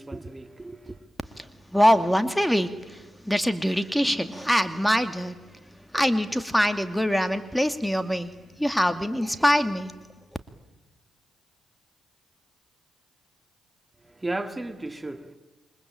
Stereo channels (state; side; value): normal; both; correlation 0.97